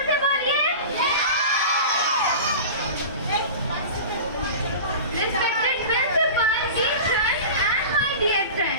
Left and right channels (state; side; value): inverted; both; correlation -0.33